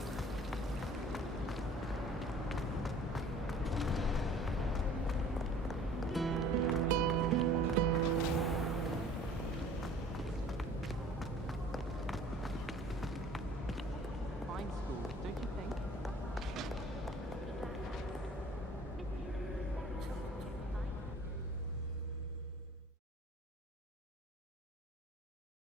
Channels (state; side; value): normal; both; correlation 0.50